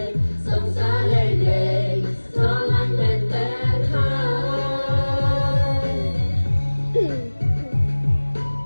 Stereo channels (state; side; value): inverted; both; correlation -1.00